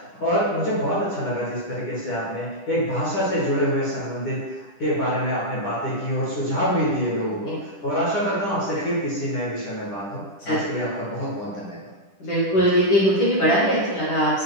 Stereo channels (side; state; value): right; late; 10 ms